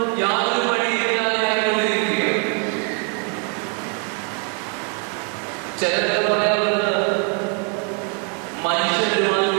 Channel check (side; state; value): left; quieter; 39.8 dB